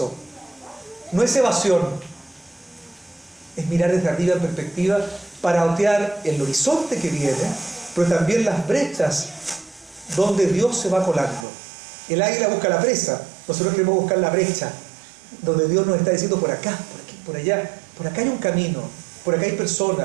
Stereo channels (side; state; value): left; drops out; at 11.5 s